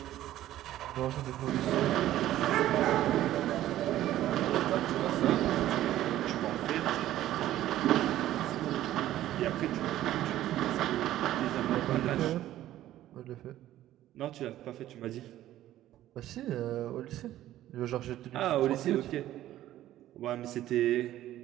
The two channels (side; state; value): left; quieter; 13.6 dB